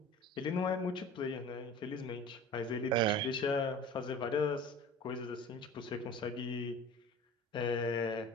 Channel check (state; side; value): normal; both; correlation 0.40